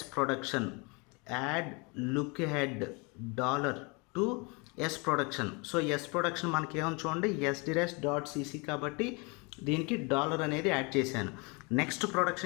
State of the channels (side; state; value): right; quieter; 30.1 dB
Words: production, add lookahead dollar to S production. So S production మనకి ఏమని చూడండి, ఎస్ డిరైవ్స్ డాట్ సిసి కాబట్టి దీనికి డాలర్ అనేది యాడ్ చేశాను. నెక్స్ట్